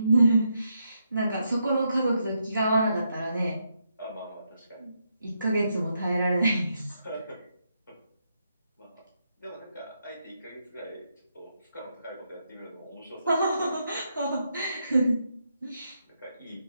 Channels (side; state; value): both; inverted; correlation -0.80